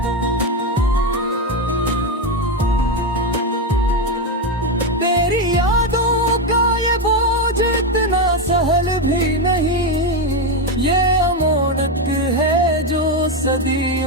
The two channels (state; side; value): normal; both; correlation 0.09